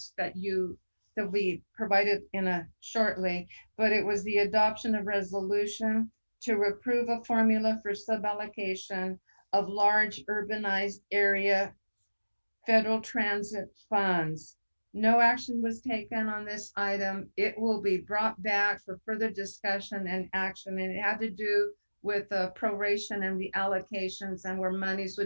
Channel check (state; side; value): inverted; both; correlation -1.00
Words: that we provided shortly, but it was the adoption of resolution to approve a formula for suballocation of large urbanized area federal transit funds. No action was taken on this item. It will be brought back for further discussion and action, and it had to do with the proration and the allocations and where monies